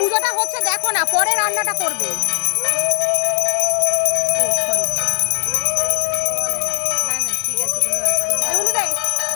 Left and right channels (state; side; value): silent; right; digital silence